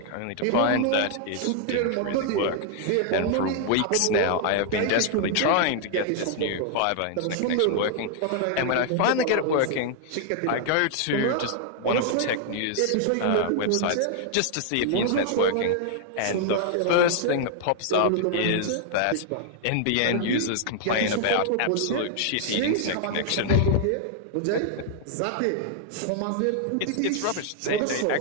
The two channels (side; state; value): both; different; correlation 0.00